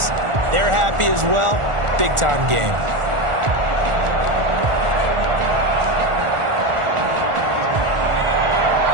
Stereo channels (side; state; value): left; late; 1.4 ms